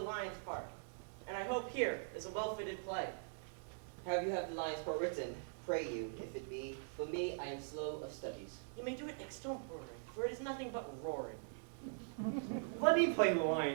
part. And I hope here is a well-fitted play. Have you have the lion's part written? Pray you, if it be. For me, I am slow of studies. You may do it next stone roaring, for it is nothing but roaring. Let me play the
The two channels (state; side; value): silent; left; digital silence